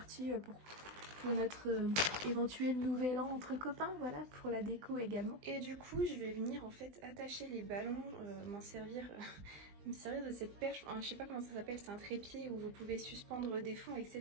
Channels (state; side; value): late; left; 20 ms